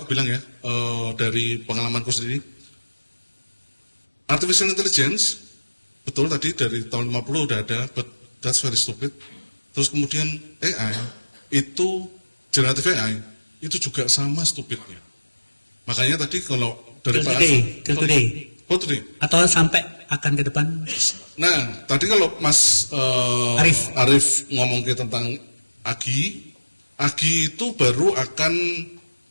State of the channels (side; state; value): both; inverted; correlation -1.00